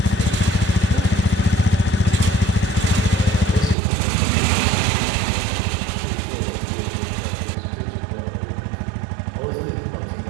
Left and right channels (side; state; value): left; drops out; at 3.8 s